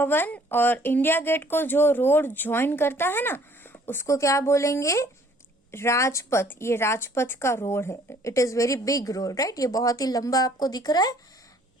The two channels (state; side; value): normal; both; correlation 0.58